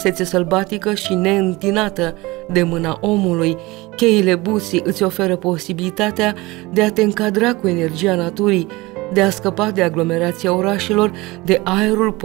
sălbatică și neîntinată de mâna omului, cheile Buții îți oferă posibilitatea de a te încadra cu energia naturii, de a scăpa de aglomerația orașelor, de aerul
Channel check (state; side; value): quieter; left; 21.8 dB